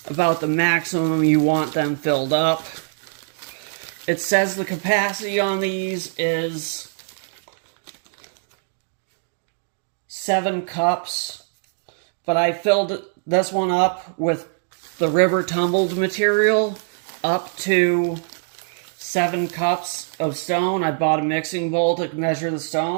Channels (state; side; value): silent; left; digital silence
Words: about the maximum you want them filled up. It says the capacity on these is 7 cups, but I filled this one up with the river tumbled material up to 7 cups of stone. I bought a mixing bowl to measure the